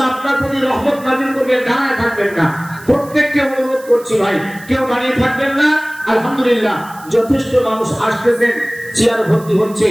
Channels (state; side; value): noise; right; hiss, 21 dB below the sound